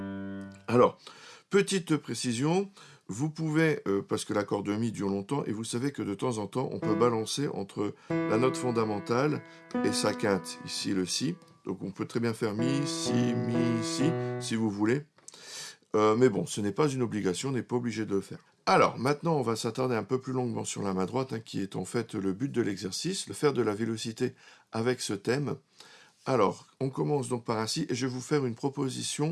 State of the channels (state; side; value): identical; both; correlation 1.00